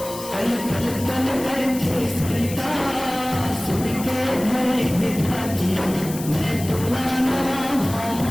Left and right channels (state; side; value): noise; left; hiss, 12 dB below the sound